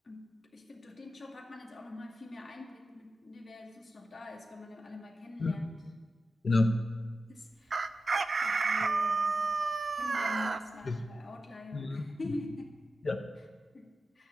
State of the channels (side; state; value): both; normal; correlation 0.91